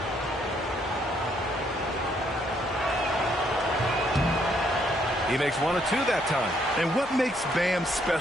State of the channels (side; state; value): both; normal; correlation 0.70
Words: He makes 1 of 2 that time. And what makes Bam